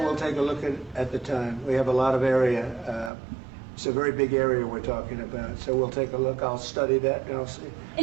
we'll take a look at the time. We have a lot of area. It's a very big area we're talking about, so we'll take a look. I'll study that and I'll see.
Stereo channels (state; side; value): drops out; left; at 3.1 s